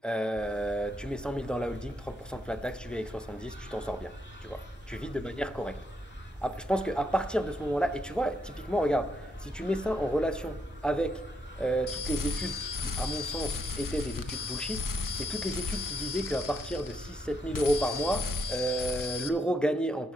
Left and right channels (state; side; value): normal; both; correlation 0.78